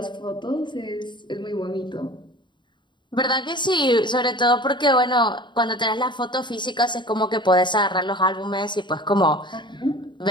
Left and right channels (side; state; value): right; late; 0.22 ms